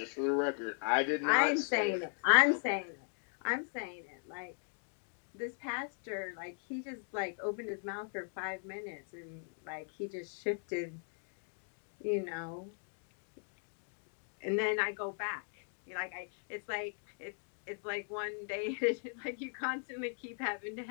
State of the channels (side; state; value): right; silent; 52 dB below the other